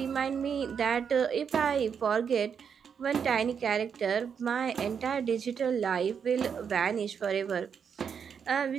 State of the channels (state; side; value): quieter; left; 7.0 dB